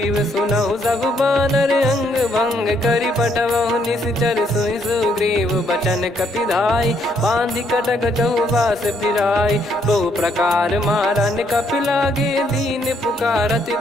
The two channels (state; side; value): normal; both; correlation 0.71